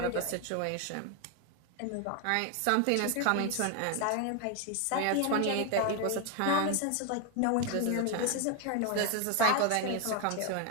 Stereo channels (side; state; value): both; different; correlation 0.01